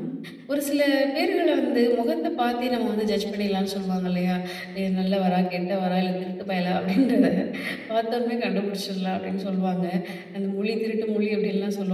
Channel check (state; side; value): identical; both; correlation 1.00